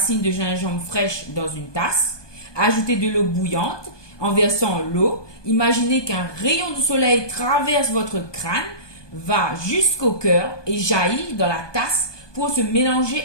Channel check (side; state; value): right; late; 1.2 ms